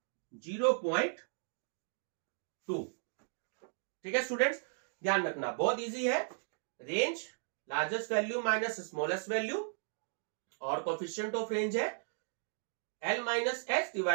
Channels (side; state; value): left; silent; digital silence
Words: 0.2। ठीक है स्टूडेंट्स, ध्यान रखना, बहुत इजी है। Range largest value minus smallest value और कोफिशिएंट ऑफ रेंज है L minus S